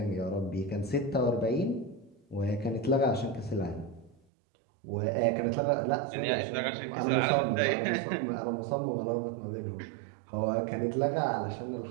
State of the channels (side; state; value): left; drops out; at 4.2 s